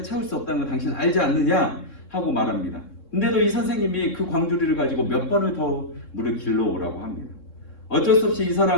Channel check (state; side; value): late; right; 3.6 ms